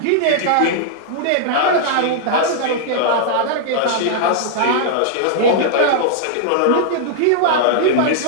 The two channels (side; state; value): both; different; correlation -0.01